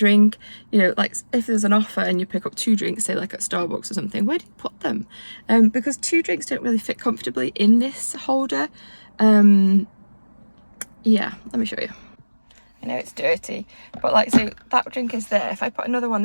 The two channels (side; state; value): both; inverted; correlation -1.00